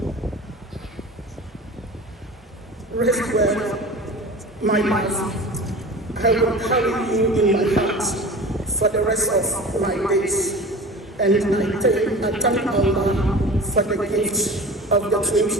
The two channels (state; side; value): normal; both; correlation 0.37